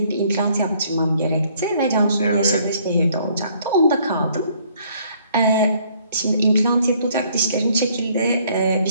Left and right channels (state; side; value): inverted; both; correlation -0.63